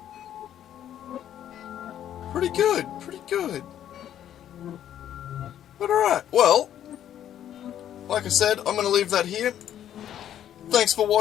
pretty good, pretty good. But alright, well, like I said, I'm going to leave that here. Thanks for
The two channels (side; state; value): right; quieter; 10.8 dB